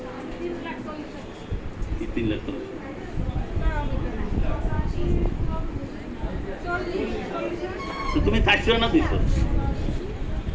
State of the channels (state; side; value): identical; both; correlation 1.00